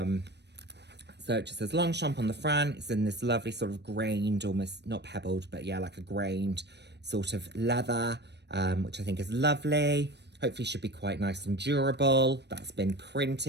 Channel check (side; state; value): left; late; 0.50 ms